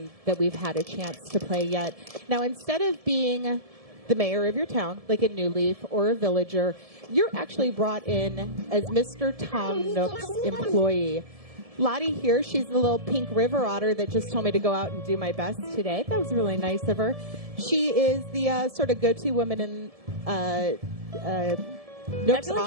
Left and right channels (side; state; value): left; late; 1.7 ms